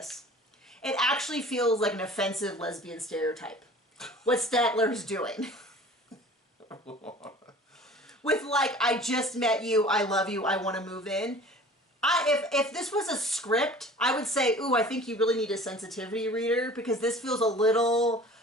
It actually feels like an offensive lesbian stereotype. What Statler's doing. with like, I just met you, I love you, I want to move in. If this was a script, I would say, ooh, I think you really need a sensitivity reader, because this feels a little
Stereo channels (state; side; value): normal; both; correlation 0.45